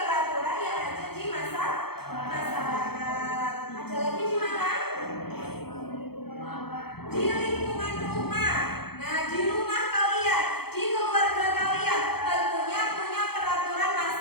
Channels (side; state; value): right; late; 0.96 ms